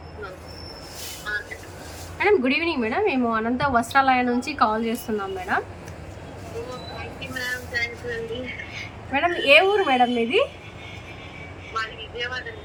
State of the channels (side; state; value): both; identical; correlation 1.00